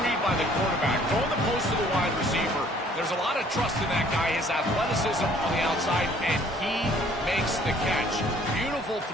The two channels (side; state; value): both; normal; correlation 0.58